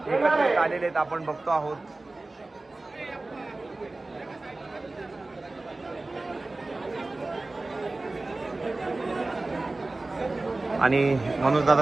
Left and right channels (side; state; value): left; quieter; 3.1 dB